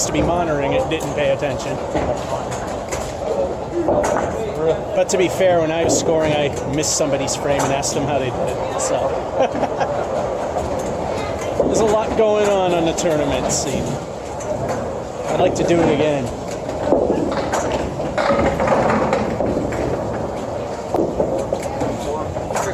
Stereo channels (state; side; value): identical; both; correlation 1.00